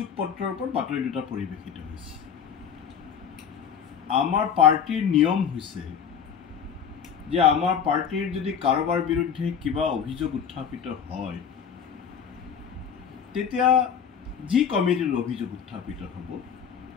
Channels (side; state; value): right; quieter; 7.5 dB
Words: পত্ৰৰ ওপৰত বাতৰি দুটা পৰিৱেশিত হৈছে আমাৰ পাৰ্টিৰ নিয়ম হৈছে যে আমাৰ পাৰ্টিৰ যদি কাৰোবাৰ বিৰুদ্ধে কিবা অভিযোগ উত্থাপিত হয় তেতিয়া যি কমিটিৰ অভিযোগ উত্থাপিত হ'ব